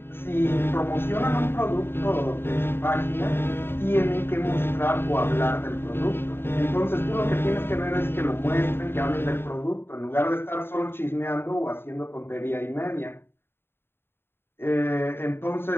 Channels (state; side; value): late; right; 0.11 ms